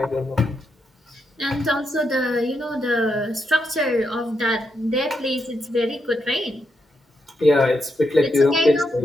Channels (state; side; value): normal; both; correlation 0.82